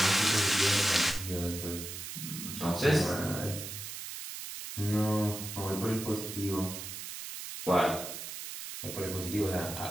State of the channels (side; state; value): right; noise; hiss, 8 dB below the sound